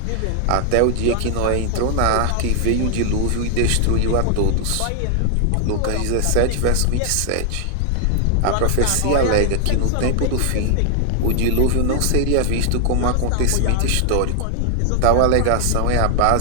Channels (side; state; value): both; different; correlation 0.00